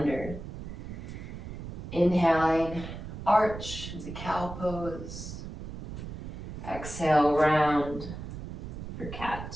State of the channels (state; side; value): noise; right; rumble, 9 dB below the sound